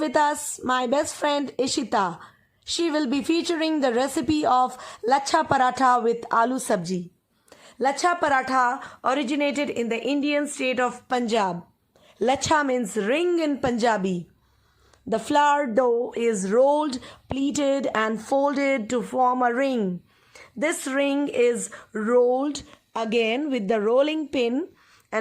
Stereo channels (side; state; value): both; identical; correlation 1.00